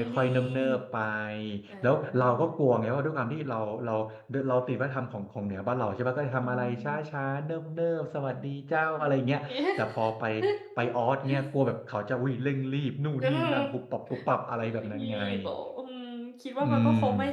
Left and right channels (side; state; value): both; identical; correlation 1.00